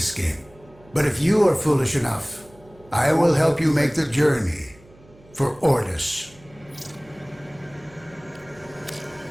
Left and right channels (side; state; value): right; noise; hum, 26 dB below the sound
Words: But if you are foolish enough, I will help you make the journey for Ordis.